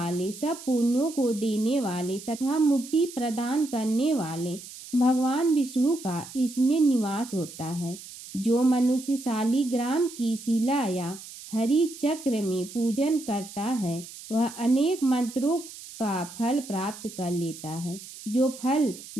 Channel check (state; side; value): noise; right; hiss, 15 dB below the sound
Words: सब पुण्यों को देने वाले तथा मुक्ति प्रदान करने वाले भगवान विष्णु का इसमें निवास होता है। जो मनुष्य शालिग्राम की शिला या हरि चक्र में पूजन करता है वह अनेक मंत्रों का फल प्राप्त कर लेता है। जो फल